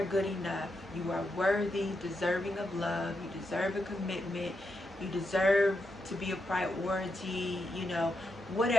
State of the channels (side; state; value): both; normal; correlation 0.84